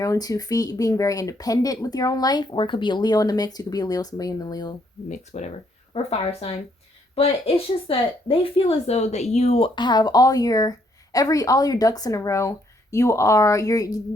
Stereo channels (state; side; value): normal; both; correlation 0.71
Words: own 2 feet, being very independent with your own life. Or it could be a Leo in the mix. You could be a Leo, somebody in the Leo mix, whatever, or fire sign. But it's just that they feel as though that you have all your ducks in a row.